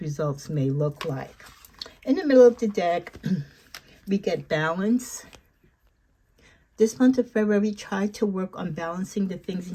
results may look like. In the middle of the deck, we get balance. This month of February, try to work on balancing the things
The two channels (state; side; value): identical; both; correlation 1.00